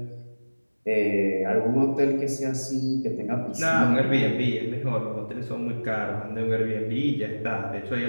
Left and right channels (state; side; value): inverted; both; correlation -1.00